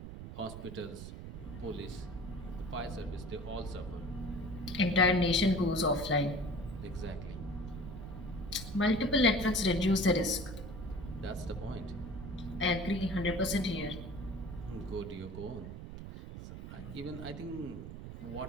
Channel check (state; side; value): noise; right; rumble, 10 dB below the sound